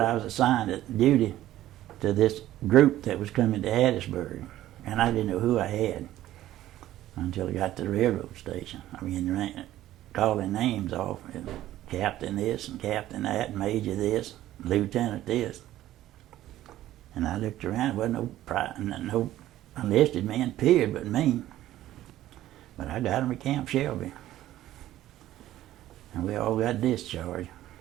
I was assigned at duty to this group that was coming to Hattiesburg. And I didn't know who I had until I got to the railroad station. I mean, calling names off. Captain this and captain that, and major this, lieutenant this. And I looked around, there wasn't no enlisted man, period, but me. But I got him at Camp Shelby. And we all got discharged.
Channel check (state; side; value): quieter; left; 13.9 dB